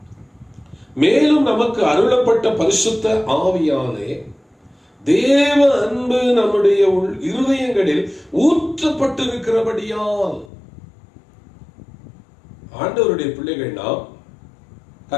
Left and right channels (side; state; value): right; drops out; at 10.5 s